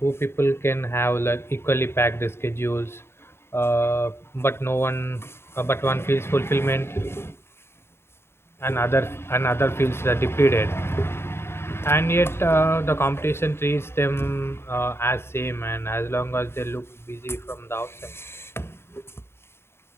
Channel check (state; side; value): late; right; 0.12 ms